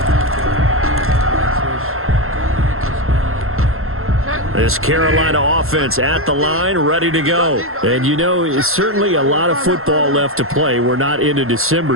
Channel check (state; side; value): late; left; 0.62 ms